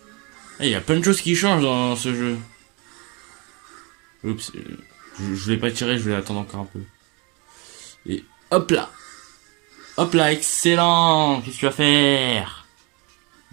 Il y a plein de choses qui changent dans ce jeu. Oups, je vais pas tirer, je vais attendre encore un peu. Et hop là. Hop là, excellent. Qu'est-ce que tu vas faire?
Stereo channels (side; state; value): left; quieter; 29.6 dB